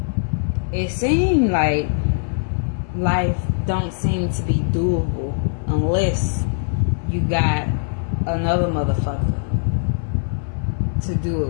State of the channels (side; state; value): right; silent; 65 dB below the other